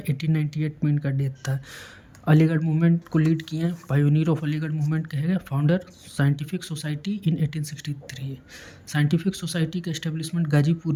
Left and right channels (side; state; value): both; identical; correlation 1.00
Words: में इनका डेथ था। अलीगढ़ मूवमेंट को लीड किए हैं। पायोनियर ऑफ अलीगढ़ मूवमेंट कहे गए। Founder scientific society in 1863। Scientific society का एस्टेब्लिशमेंट